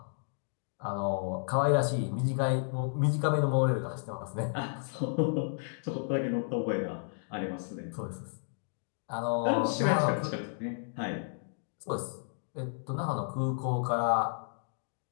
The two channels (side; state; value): right; silent; digital silence